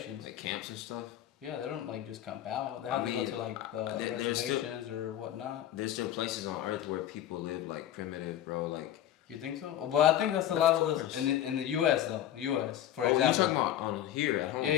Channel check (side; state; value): right; quieter; 11.6 dB